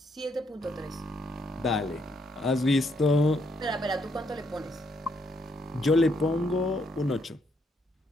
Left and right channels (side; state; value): both; normal; correlation 0.74